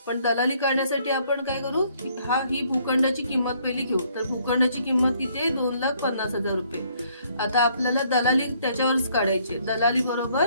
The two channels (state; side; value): inverted; both; correlation -0.66